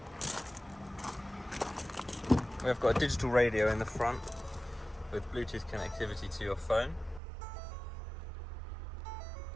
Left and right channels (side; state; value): left; drops out; at 7.2 s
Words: We've got a digital radio in the front with Bluetooth connectivity to your phone.